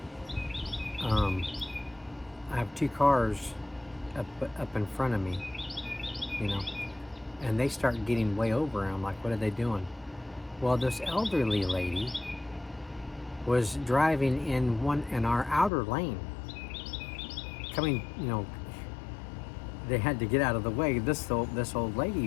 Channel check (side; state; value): right; drops out; at 15.7 s